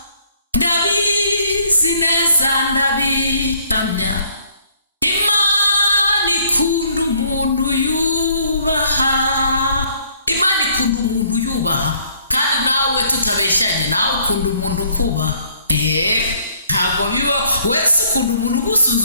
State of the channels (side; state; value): both; inverted; correlation -0.63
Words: Ndabizi neza ndabihamya, Imana ikunda umuntu yubaha. Imana ikunda umuntu yubaha, kandi nawe tutabeshyanye, nawe ukunda umuntu ukubaha. Ntabwo biba wese ukunda umuntu